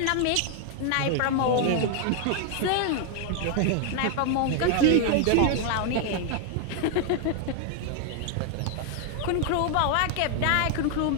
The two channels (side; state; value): both; different; correlation 0.00